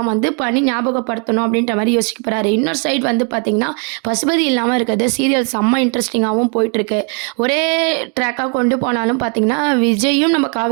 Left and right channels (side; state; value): left; quieter; 38.2 dB